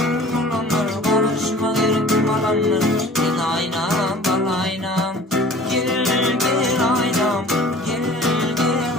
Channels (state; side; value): normal; both; correlation 0.46